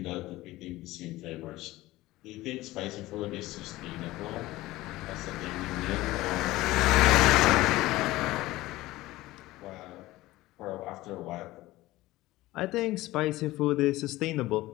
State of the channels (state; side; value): quieter; right; 17.9 dB